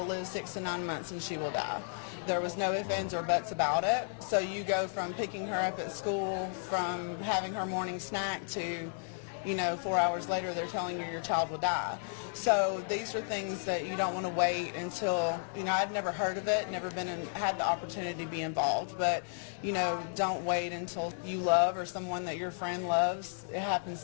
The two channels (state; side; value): silent; right; digital silence